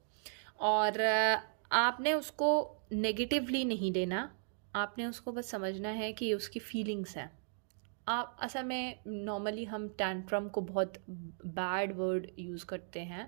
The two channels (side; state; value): left; silent; digital silence